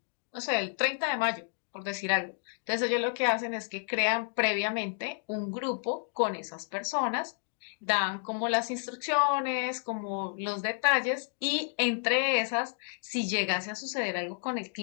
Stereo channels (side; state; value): right; silent; 57 dB below the other